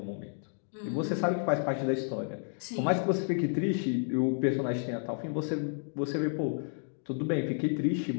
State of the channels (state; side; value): silent; right; digital silence